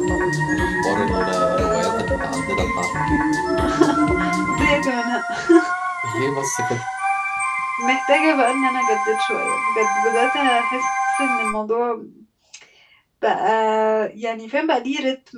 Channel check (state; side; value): identical; both; correlation 1.00